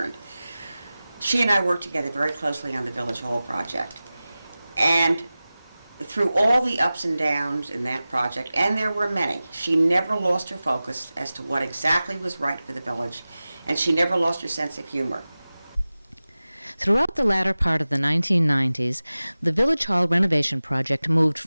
She and I worked together very closely on the Village Hall project, and through all the ups and downs in that project, and there were many, she never lost her focus as to what exactly was right for the village, and she never lost her sense of humor. Throughout the latter part of the 1990s, the Village Hall renovation project moved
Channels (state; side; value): inverted; both; correlation -0.96